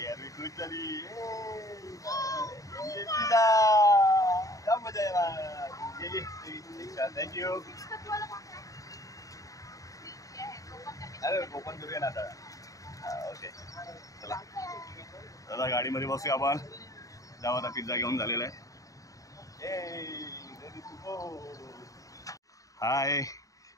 अरवी खुश झाली. पिझ्झा क्या मजा येणार. थँक्यू. अरे ओपन करूया ना आता. ओके चला दादा गाडीमध्ये बसूया आपण. जाऊ आता पिझ्झा घेऊन झालेला आहे. हाय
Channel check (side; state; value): right; late; 0.16 ms